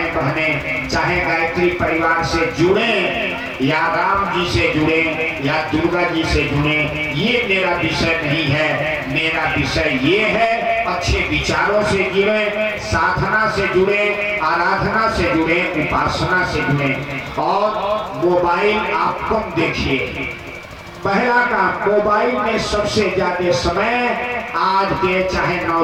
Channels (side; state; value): both; identical; correlation 1.00